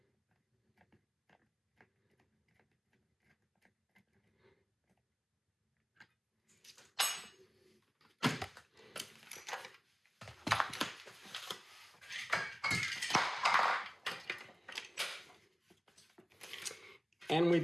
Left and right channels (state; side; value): identical; both; correlation 1.00